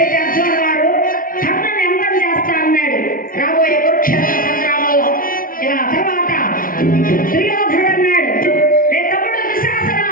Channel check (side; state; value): right; late; 0.41 ms